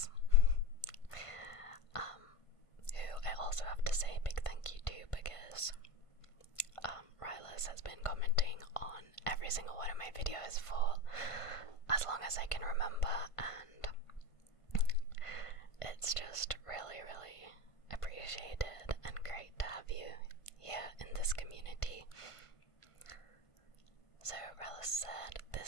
who I also have to say a big thank you to because Rylus has been commenting on every single one of my videos for as long as I can remember, and it's just really appreciated and great to have you here in this community. So Rylus said,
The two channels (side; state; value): right; late; 1.5 ms